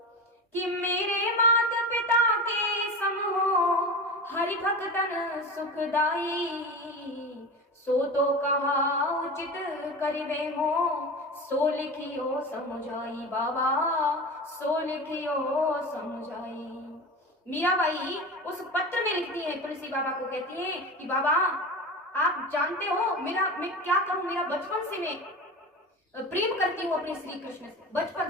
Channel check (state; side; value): normal; both; correlation 0.28